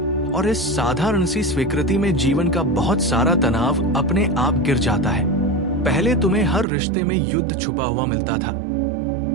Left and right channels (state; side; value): drops out; left; at 6.7 s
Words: और इस साधारण सी स्वीकृति में जीवन का बहुत सारा तनाव अपने आप गिर जाता है। पहले तुम्हें हर रिश्ते में युद्ध छुपा हुआ मिलता था,